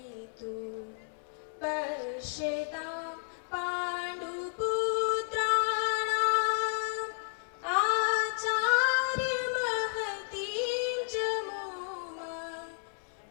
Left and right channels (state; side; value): silent; right; 56 dB below the other